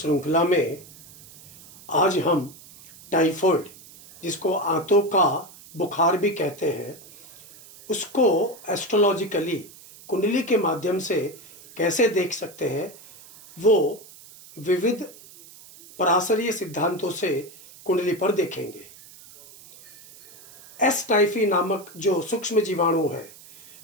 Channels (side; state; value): right; noise; hiss, 21 dB below the sound